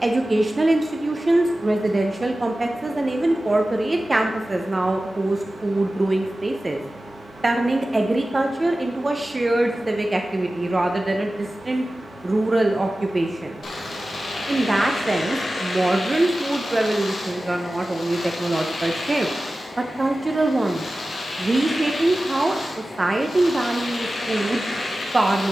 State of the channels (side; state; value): both; normal; correlation 0.95